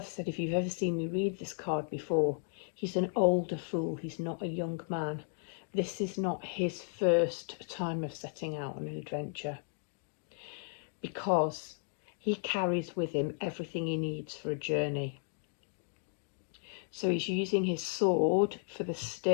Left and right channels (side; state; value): right; silent; 55 dB below the other